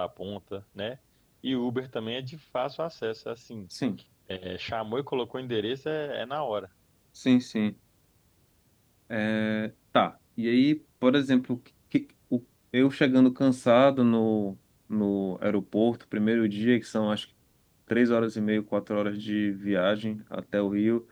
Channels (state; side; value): identical; both; correlation 1.00